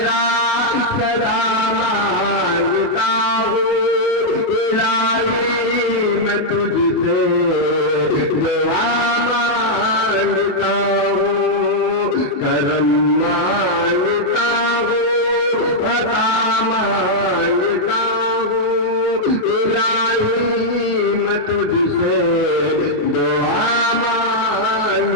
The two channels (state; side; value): late; right; 28 ms